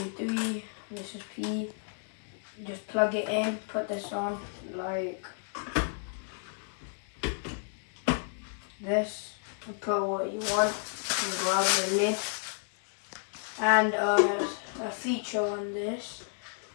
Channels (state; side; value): silent; right; digital silence